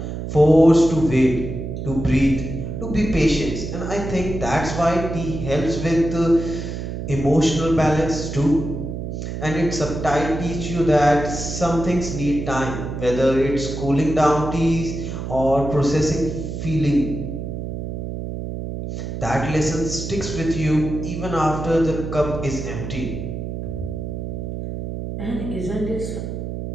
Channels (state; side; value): noise; right; hum, 6 dB below the sound